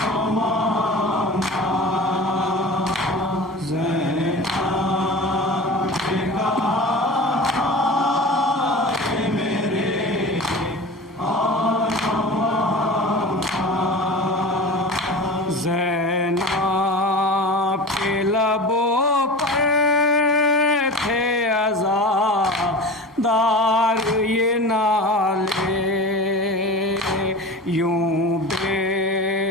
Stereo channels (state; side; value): normal; both; correlation 0.34